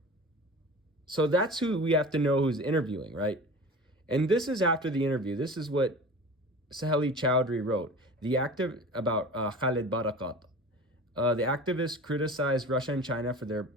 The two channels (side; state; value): both; normal; correlation 0.37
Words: So that's who we have to know who's interviewing, right? And this is after the interview. This is what Saheli Chowdhury wrote. The active about Khalid Barakat. The activists criticized Russia and China for their